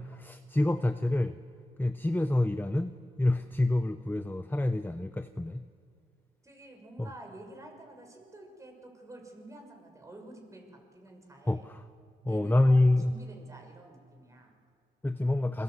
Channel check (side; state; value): both; normal; correlation 0.98